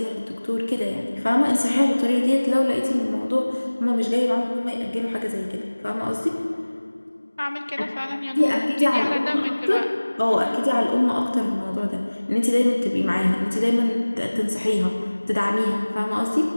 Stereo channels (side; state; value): both; inverted; correlation -1.00